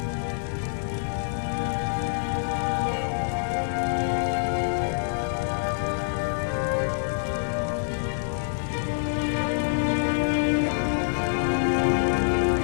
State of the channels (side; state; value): right; silent; digital silence